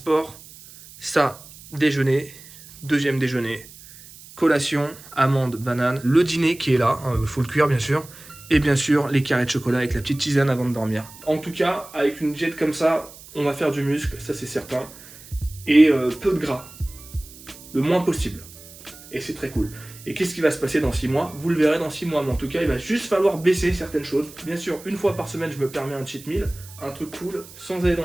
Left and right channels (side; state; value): right; noise; hiss, 19 dB below the sound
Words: ça déjeuner, deuxième déjeuner, collation, amande, banane, le dîner qui est là, faut le cuire bien sûr, et bien sûr les carrés de chocolat avec la petite tisane avant de dormir. En tout cas, avec une diète comme ça, on va faire du muscle, ça c'est certain, et peu de gras, le moins possible, et c'est très cool. Et qu'est-ce qui va se passer dans 6 mois? Vous le verrez dans 6 mois, mais en tout cas il va juste falloir baisser certaines choses. Bien sûr, une fois par semaine je me permets un cheat meal, un truc cool, sans aller